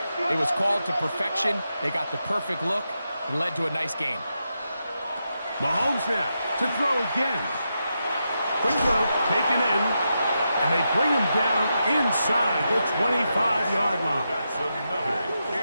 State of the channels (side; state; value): both; inverted; correlation -0.86